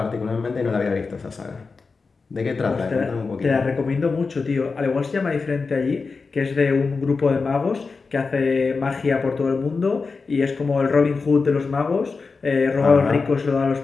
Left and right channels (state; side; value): quieter; right; 4.5 dB